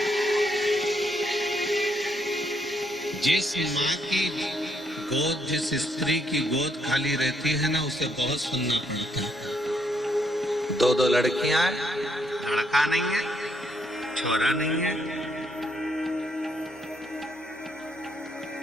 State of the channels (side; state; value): both; normal; correlation 0.73